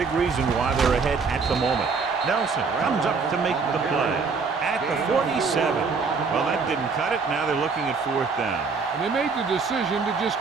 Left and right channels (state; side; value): quieter; left; 4.9 dB